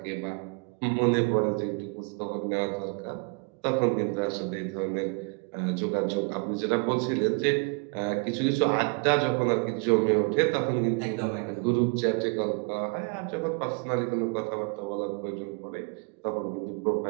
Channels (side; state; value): left; quieter; 33.0 dB